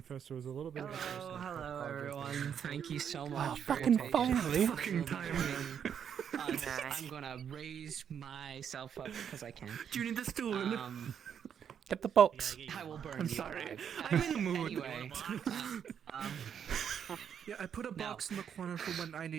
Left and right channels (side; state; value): left; quieter; 8.2 dB